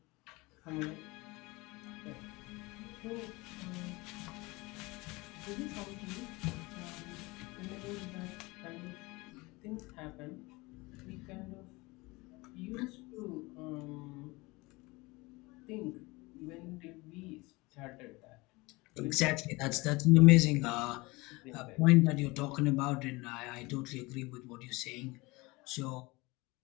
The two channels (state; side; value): quieter; right; 23.5 dB